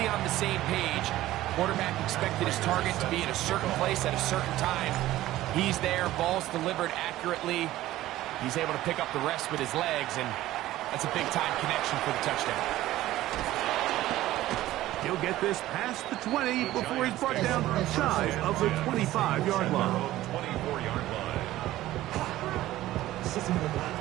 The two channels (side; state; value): left; quieter; 15.3 dB